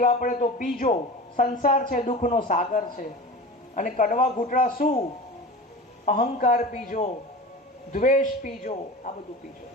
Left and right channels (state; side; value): normal; both; correlation 0.33